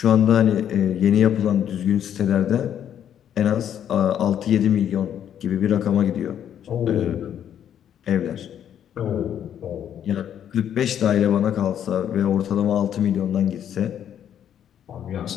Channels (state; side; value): quieter; right; 9.7 dB